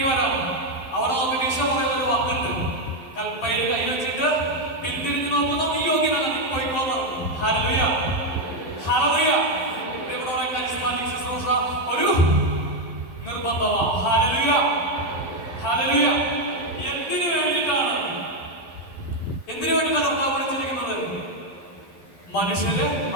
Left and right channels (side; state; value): right; late; 11 ms